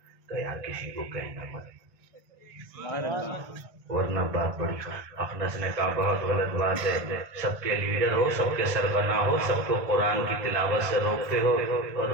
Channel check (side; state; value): left; late; 1.5 ms